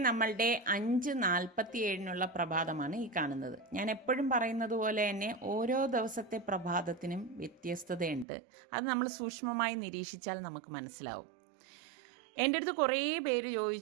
നമ്മളുടെ 5:47 പ്രഭാതമാണ് ഈ കാണുന്നത്. ഞാൻ എപ്പോഴും പറയുന്നത് പോലെ തന്നെ ഓരോ ദിവസത്തെ പ്രഭാതത്തിനും വ്യത്യസ്തതയുണ്ട്. അത് നമ്മൾ സൂക്ഷ്മമായി നിരീക്ഷിച്ചാൽ നമുക്ക് മനസ്സിലാവും. എൻ്റെ അടുത്ത് കുറേ പേര്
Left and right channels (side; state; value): left; drops out; at 8.2 s